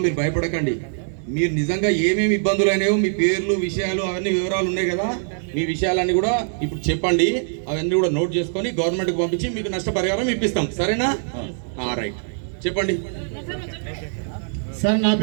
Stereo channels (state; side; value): silent; left; digital silence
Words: మీరు భయపడకండి. మీరు నిజంగా ఏమేమి ఇబ్బందులు అయినాయో మీ పేర్లు, విషయాలు, అవన్నీ వివరాలు ఉన్నాయి కదా, మీ విషయాలన్నీ కూడా ఇప్పుడు చెప్పండి. అవన్నీ కూడా నోట్ చేసుకొని గవర్నమెంట్కి పంపించి మీకు నష్టపరిహారం ఇప్పిస్తాం. సరేనా? రైట్, చెప్పండి సార్. నా